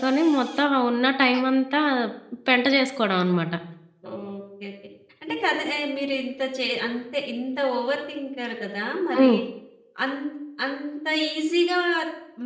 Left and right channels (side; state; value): both; identical; correlation 1.00